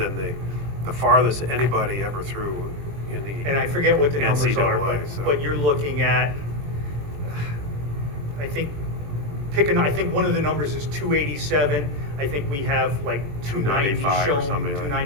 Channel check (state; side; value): late; left; 21 ms